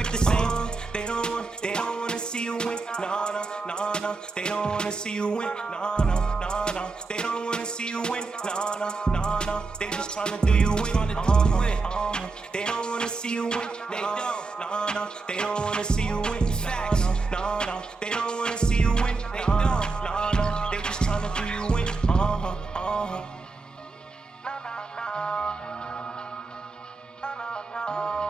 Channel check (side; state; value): left; quieter; 4.0 dB